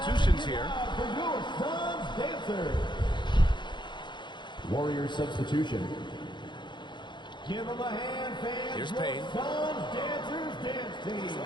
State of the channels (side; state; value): right; late; 0.22 ms